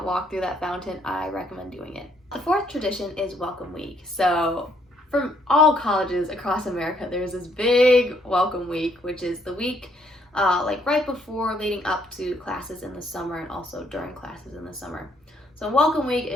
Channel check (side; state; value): both; normal; correlation 0.69